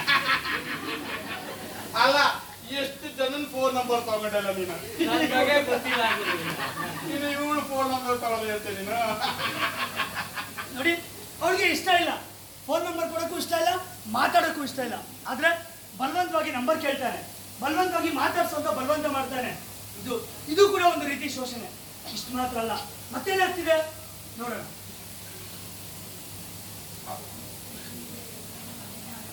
ಅಲ್ಲ, ಎಷ್ಟು ಜನನ್ ಫೋನ್ ನಂಬರ್ ತಗೊಂಡಲ್ಲ ನೀನು? ನನಗೆ ಗೊತ್ತಿಲ್ಲ ನೀನು ಇವಳು ಫೋನ್ ನಂಬರ್ ತಗೊಳ್ಳಿ ಅಂತ ನೀನು? ನೋಡಿ, ಅವ್ರಿಗೆ ಇಷ್ಟ ಇಲ್ಲ, ಫೋನ್ ನಂಬರ್ ಕೊಡೋಕ್ಕೂ ಇಷ್ಟ ಇಲ್ಲ, ಮಾತಾಡೋಕ್ಕೂ ಇಷ್ಟ ಇಲ್ಲ. ಆದ್ರೆ ಬಲವಂತವಾಗಿ ನಂಬರ್ ಕೇಳ್ತಾನೆ, ಬಲವಂತವಾಗಿ ಮಾತಾಡ್ಸೋಂತ ಬಲವಂತ ಮಾಡ್ತಾನೆ. ಇದು ಕೂಡ ಒಂದು ರೀತಿ ಶೋಷಣೆ. ಇಷ್ಟು ಮಾತ್ರ ಅಲ್ಲ, ಮತ್ತೇನಾಗ್ತಿದೆ ನೋಡೋಣ.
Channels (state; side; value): identical; both; correlation 1.00